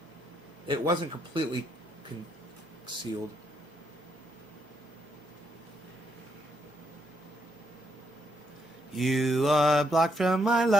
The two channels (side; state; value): both; normal; correlation 0.76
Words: It wasn't completely concealed. You are blocked from my